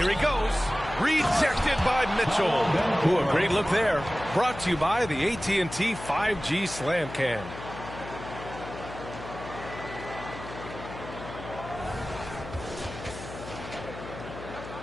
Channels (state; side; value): noise; left; hum, 12 dB below the sound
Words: he goes. Rejected by Mitchell. Ooh, a great look there. Brought to you by the AT&T 5G Slam Cam.